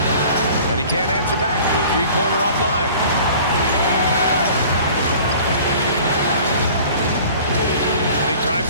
And he can't answer back. The three-pointer offline. And he drives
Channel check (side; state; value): both; inverted; correlation -0.47